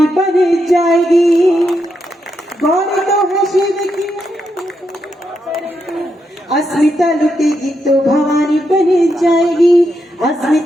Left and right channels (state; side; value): normal; both; correlation 0.82